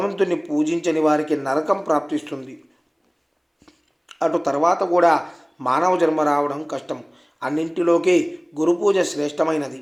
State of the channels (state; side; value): identical; both; correlation 1.00